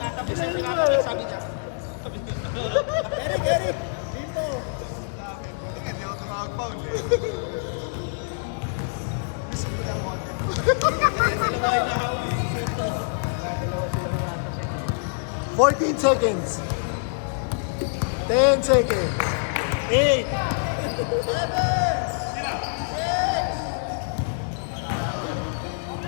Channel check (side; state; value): right; silent; 61 dB below the other